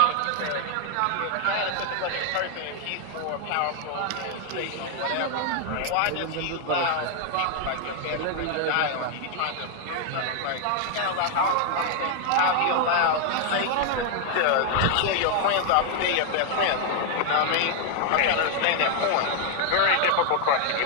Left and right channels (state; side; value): different; both; correlation 0.00